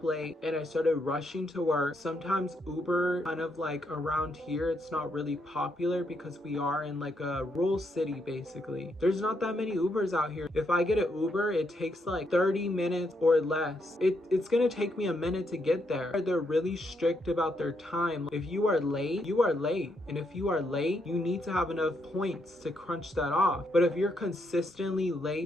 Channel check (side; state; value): both; normal; correlation 0.77